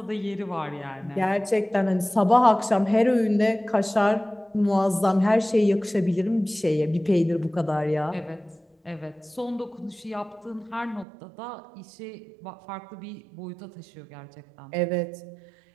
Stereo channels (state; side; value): drops out; left; at 11.1 s